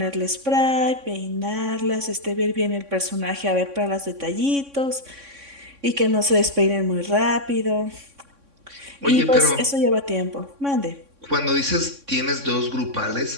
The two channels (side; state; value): left; late; 3.6 ms